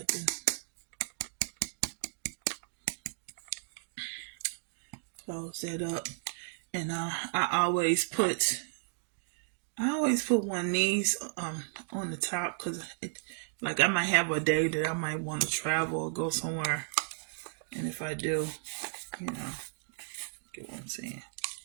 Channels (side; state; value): left; silent; digital silence